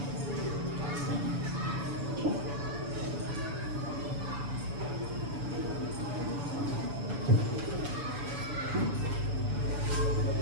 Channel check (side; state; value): left; late; 7.0 ms